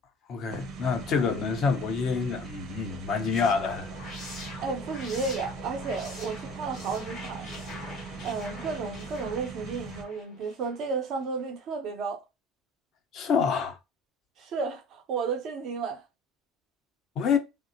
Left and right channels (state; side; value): normal; both; correlation 0.44